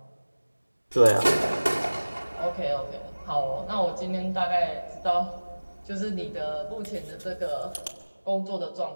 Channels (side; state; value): both; inverted; correlation -1.00